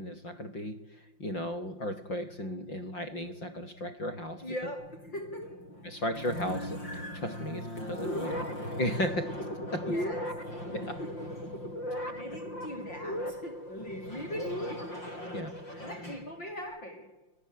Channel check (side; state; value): right; late; 5.7 ms